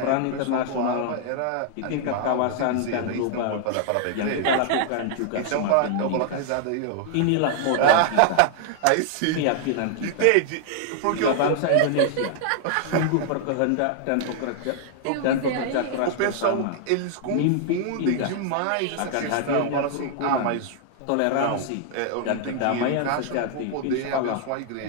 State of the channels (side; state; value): both; different; correlation 0.00